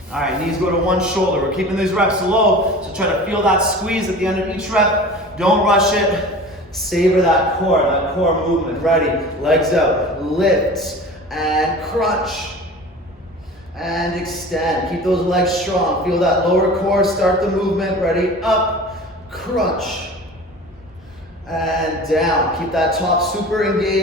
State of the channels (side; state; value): both; normal; correlation 0.38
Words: All right, knees go to one shoulder. We're keeping these reps low, so try to feel that squeeze at the end of each rep. Don't rush it. Savor that core movement. Ready? Legs out, lift, and crunch, and extend. Keep those legs strong. Feel that lower core, start the movement. Ready? Up, crunch, and down. Keep that top super